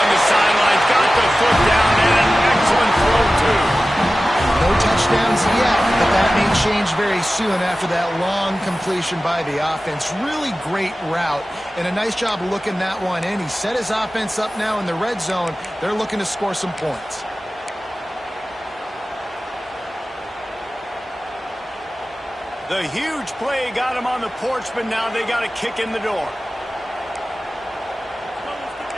the sideline. Got the foot down, and an excellent throw, too. No touchdowns yet, but that may change very soon after that long completion by the offense. Really great route, and a nice job looking that one in. He set his offense up now in the red zone. They're looking to score some points. The huge play got him on the porch, but now they got a kick in the door.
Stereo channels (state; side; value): normal; both; correlation 0.96